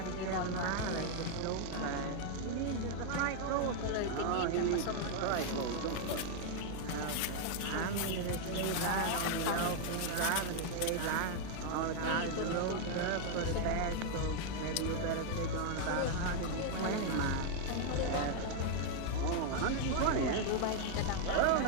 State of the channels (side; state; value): both; different; correlation 0.00